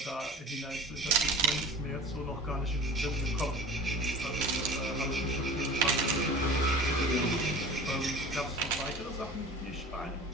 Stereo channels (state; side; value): normal; both; correlation 0.38